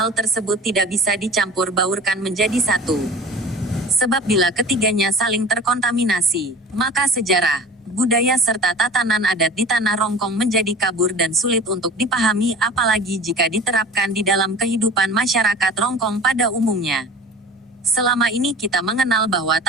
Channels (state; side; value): normal; both; correlation 0.39